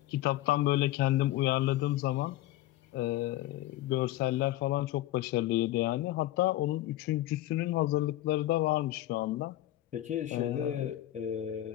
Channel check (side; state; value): right; quieter; 15.1 dB